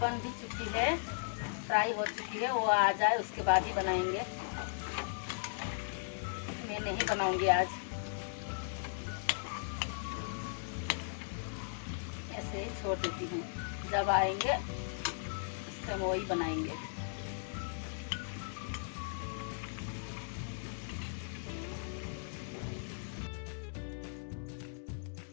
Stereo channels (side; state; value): right; silent; digital silence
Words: बन भी चुकी है, फ्राई हो चुकी है, वो आ जाए उसके बाद ही बनाएंगे। मैं नहीं बनाऊंगी आज, ऐसे ही छोड़ देती हूँ, जब आएंगे उस टाइम वही बनाएंगे।